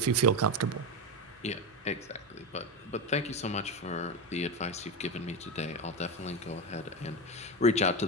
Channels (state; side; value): normal; both; correlation 0.16